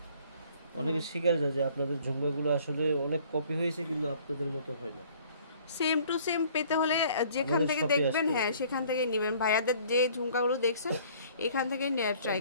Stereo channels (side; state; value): both; inverted; correlation -0.56